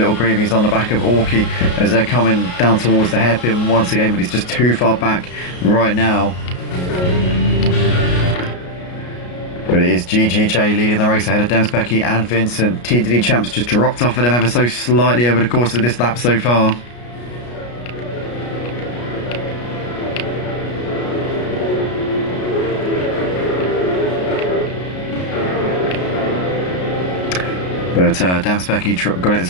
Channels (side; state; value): right; late; 33 ms